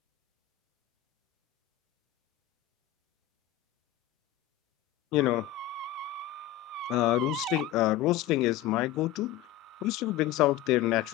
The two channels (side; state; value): right; quieter; 12.6 dB